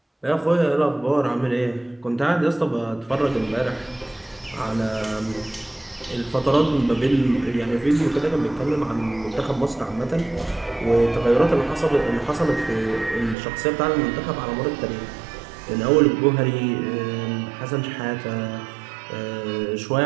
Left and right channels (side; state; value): left; drops out; at 13.4 s